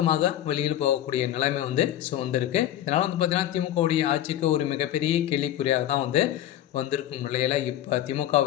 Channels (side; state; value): right; quieter; 12.2 dB